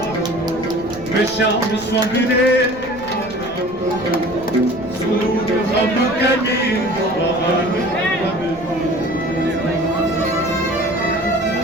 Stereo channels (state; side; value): noise; left; rumble, 19 dB below the sound